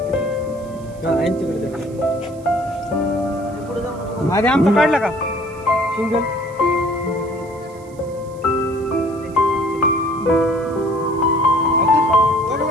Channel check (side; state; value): right; noise; hiss, 27 dB below the sound